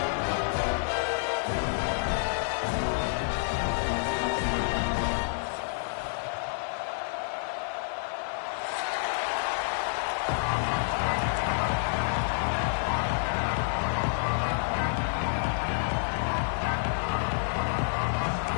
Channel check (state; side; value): silent; right; digital silence